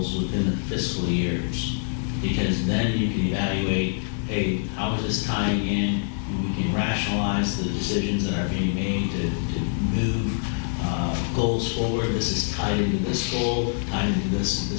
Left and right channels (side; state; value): right; silent; 62 dB below the other